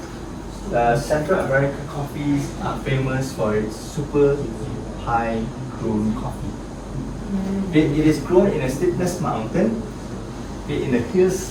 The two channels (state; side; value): identical; both; correlation 1.00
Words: Central America coffees are famous for its super high grown coffee. It is grown in a steepness mountain, in a hill